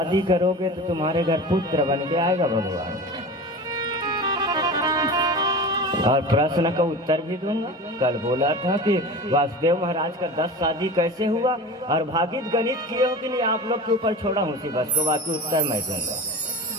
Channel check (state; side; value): normal; both; correlation 0.33